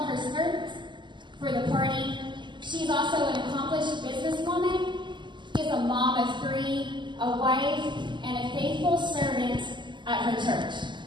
of her service for the party, she's also an accomplished businesswoman. She's a mom of 3, a wife, and a faithful servant at her church.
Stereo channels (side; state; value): left; late; 0.22 ms